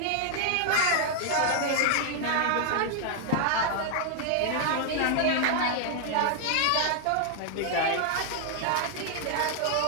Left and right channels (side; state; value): both; different; correlation 0.00